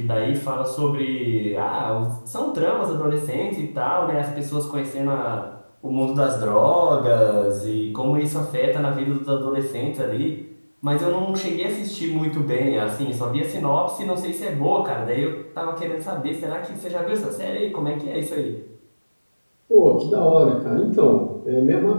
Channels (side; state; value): both; inverted; correlation -1.00